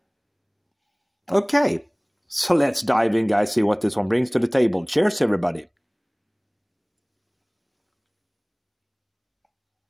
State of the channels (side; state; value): both; identical; correlation 1.00